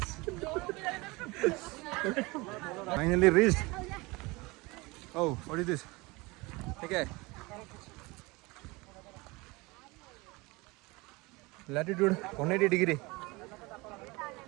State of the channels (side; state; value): left; quieter; 24.0 dB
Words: Finally reached. Oh, what is this? ठीक है. Latitude 180 degree.